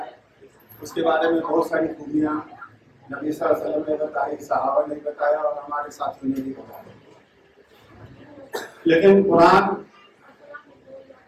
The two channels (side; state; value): both; identical; correlation 1.00